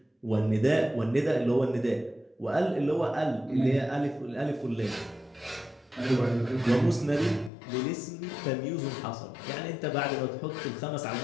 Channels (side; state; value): right; drops out; at 7.5 s